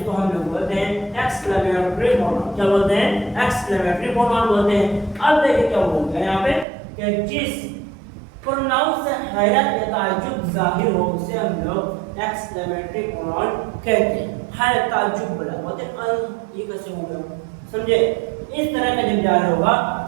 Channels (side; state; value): left; drops out; at 6.7 s